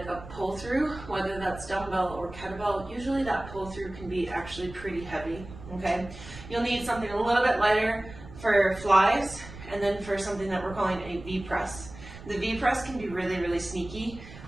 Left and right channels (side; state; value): right; noise; rumble, 15 dB below the sound